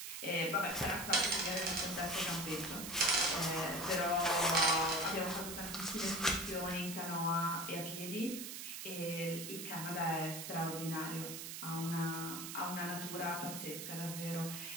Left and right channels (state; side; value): noise; right; hiss, 7 dB below the sound